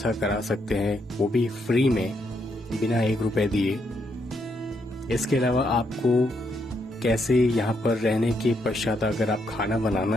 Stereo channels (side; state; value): both; normal; correlation 0.77